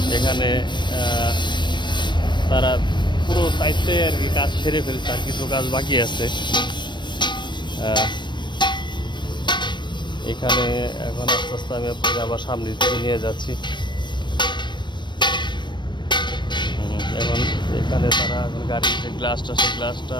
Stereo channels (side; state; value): right; late; 0.22 ms